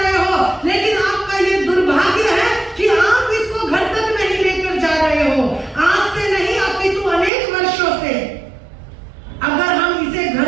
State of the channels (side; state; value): left; drops out; at 7.3 s